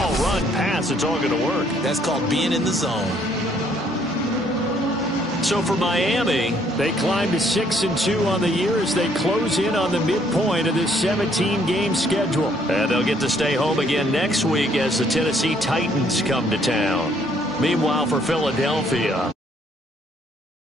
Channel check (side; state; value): both; normal; correlation 0.66